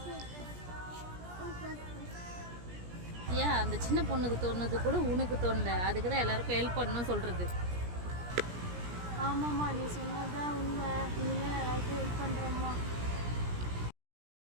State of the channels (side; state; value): left; late; 17 ms